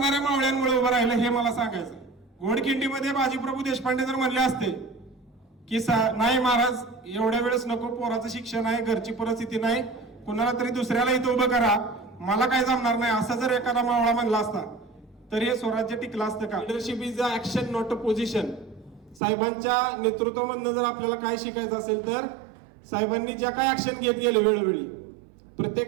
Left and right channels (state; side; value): drops out; left; at 19.2 s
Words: मावळ्यांमुळे उभं राहिलं, हे मला सांगायचं. घोडखिंडीमध्ये बाजीप्रभू देशपांडे जर म्हणले असते की नाही महाराज एवढ्या वेळेस नको, पोराचं शिक्षण आहे, घरची परिस्थिती नाही, कुणाला तरी दुसऱ्याला इथं उभं करा, मला काय जमणार नाही, असं जर एखादा मावळा म्हणला असता तर हे स्वराज्य टिकलं असतं का? Leadership is a action not a position. साहेबांच्या नेतृत्वामधनं जर आपल्याला काय शिकायचं असेल तर साहेबांनी ज्या काय ऍक्शन घेत गेले वेळोवेळी,